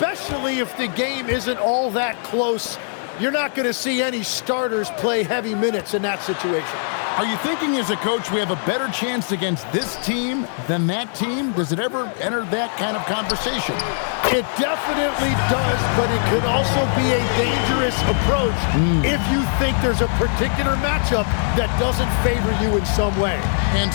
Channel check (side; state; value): right; silent; digital silence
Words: if the game isn't all that close. You're not going to see any starters play heavy minutes in that situation. Are you thinking as a coach we have a better chance against this team than that team? Does it ever enter that kind of conversation? It definitely does, but it could also be a dangerous approach if you think there's a particular matchup that doesn't favor you in some way. And